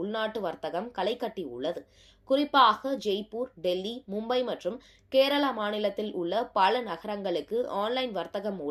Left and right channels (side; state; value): both; identical; correlation 1.00